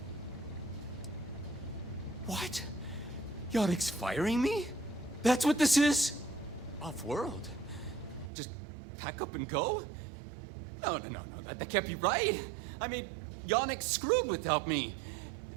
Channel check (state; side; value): drops out; left; at 8.3 s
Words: What? Yannick's firing me? That's what this is? Off-world? Just pack up and go? No, that can't be right. I mean, Yannick screwed without me.